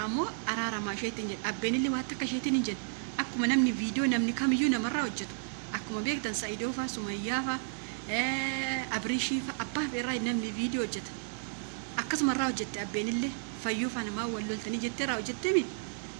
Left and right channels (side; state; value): left; silent; digital silence